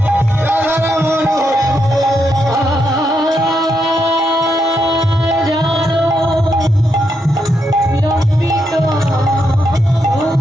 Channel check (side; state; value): both; normal; correlation 0.81